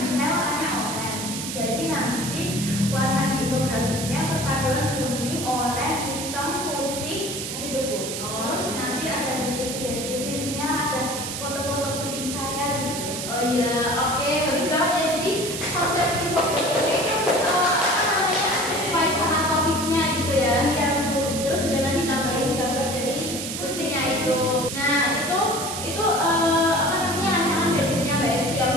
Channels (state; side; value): noise; right; hiss, 5 dB below the sound